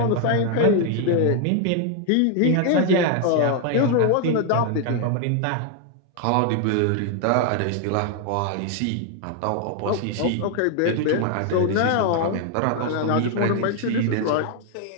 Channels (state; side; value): different; both; correlation 0.00